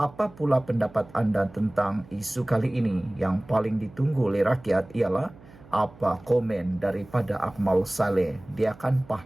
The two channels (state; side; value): noise; right; hum, 23 dB below the sound